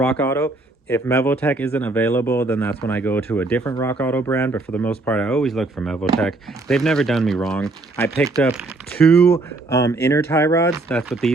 Auto. If Mevoltech isn't available, then that's when I go to a different Rock Auto brand. But for the most part, I always look for Mevoltech. They've never done me wrong. I picked up 2 inner tie rods. That's what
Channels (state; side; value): quieter; left; 3.1 dB